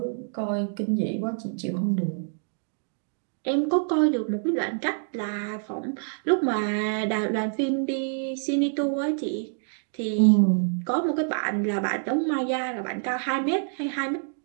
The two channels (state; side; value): silent; left; digital silence